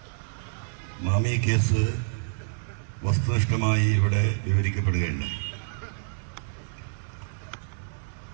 മാമി കേസ് വസ്തുനിഷ്ഠമായി ഇവിടെ വിവരിക്കപ്പെടുകയുണ്ടായി.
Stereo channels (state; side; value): silent; left; 59 dB below the other